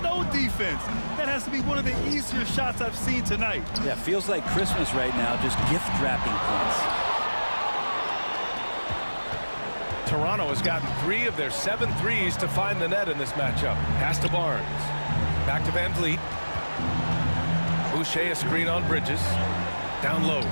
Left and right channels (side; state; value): both; inverted; correlation -1.00